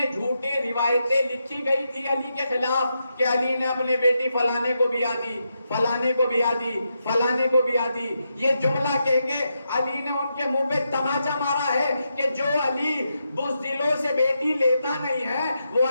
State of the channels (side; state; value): both; inverted; correlation -0.84